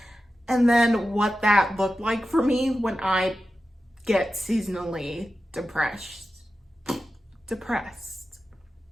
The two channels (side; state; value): both; normal; correlation 0.92